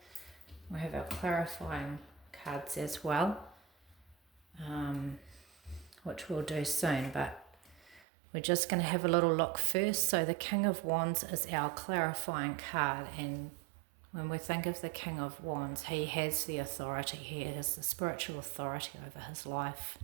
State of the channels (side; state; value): left; drops out; at 8.0 s